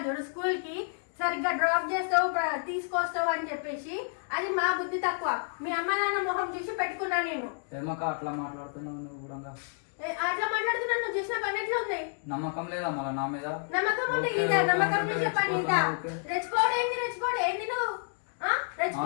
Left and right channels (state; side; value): silent; right; digital silence